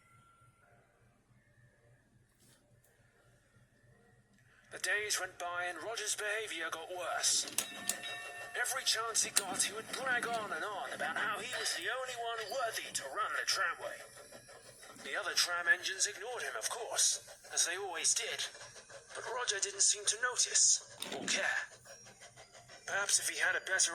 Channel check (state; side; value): identical; both; correlation 1.00